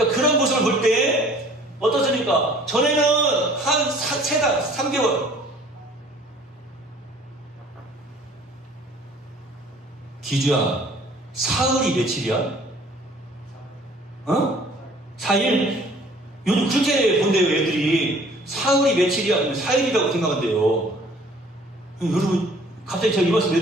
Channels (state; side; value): normal; both; correlation 0.54